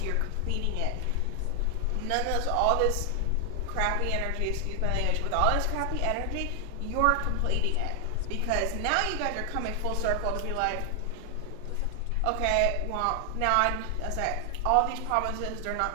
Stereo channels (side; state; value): both; different; correlation 0.00